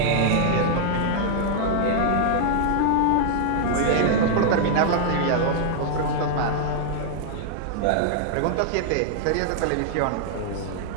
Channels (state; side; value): different; both; correlation -0.01